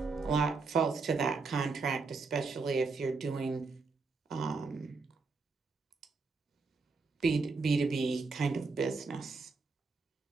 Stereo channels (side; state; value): left; quieter; 4.2 dB